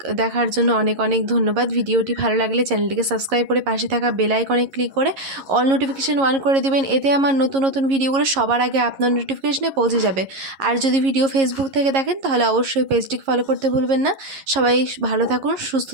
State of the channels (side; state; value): left; late; 11 ms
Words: দেখার জন্য অনেক অনেক ধন্যবাদ। ভিডিওটি ভালো লাগলে চ্যানেলটিকে সাবস্ক্রাইব করে পাশে থাকা বেল আইকনে ক্লিক করে অল নোটিফিকেশান অন করে দিবেন। এতে আমার নতুন নতুন ভিডিওগুলো সবার আগে আপনার নোটিফিকেশনে পৌঁছে যাবে। আর যদি ভিডিও ফেসবুক থেকে দেখেন তাহলে অবশ্যই পেজটিকে ফলো করতে ভুলবেন না। সবাই ভালো থাকুন, সুস্থ